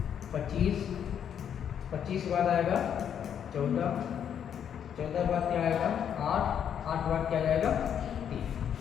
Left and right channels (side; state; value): right; quieter; 8.7 dB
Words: 25 के बाद आएगा 14 के बाद क्या आएगा 8 के बाद क्या जाएगा 3।